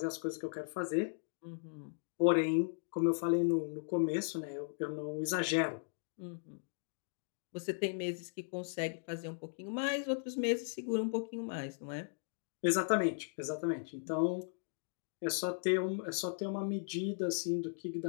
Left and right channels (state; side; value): silent; right; digital silence